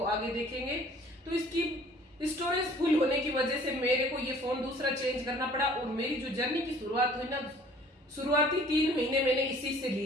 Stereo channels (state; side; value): normal; both; correlation 0.53